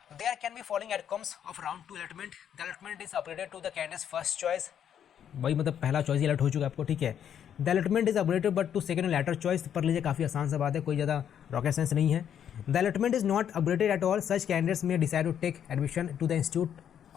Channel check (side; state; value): right; quieter; 9.1 dB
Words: There can be following outcomes of round 2 allotment. The allotment is upgraded to the candidate's first choice. भाई मतलब पहला चॉइस ही अलर्ट हो चुका है आपको, ठीक है। The allotment is upgraded but to second letter choice, पढ़ लीजिए, काफ़ी आसान सा बात है, कोई ज़्यादा रॉकेट साइंस नहीं है। The allotment is not upgraded at all, such candidates may decide to take admission to the institute